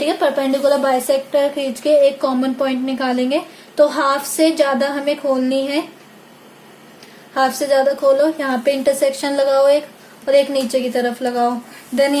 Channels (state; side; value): identical; both; correlation 1.00